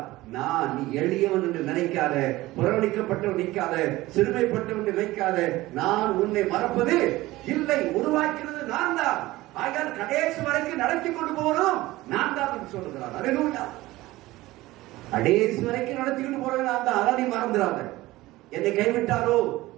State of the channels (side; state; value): left; quieter; 18.2 dB